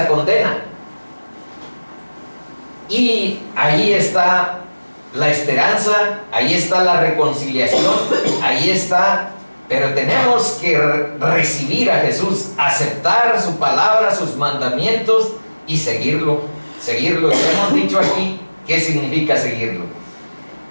condena. Y ahí está la esperanza, ahí está la reconciliación, ahí está. Pero tenemos que recibir a Jesús, aceptar su palabra, sus mandamientos y seguirlo. Seguirlo. Ya hemos dicho aquí qué significa seguirlo.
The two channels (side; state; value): both; inverted; correlation -1.00